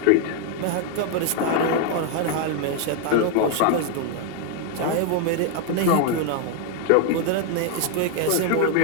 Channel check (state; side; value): different; both; correlation 0.01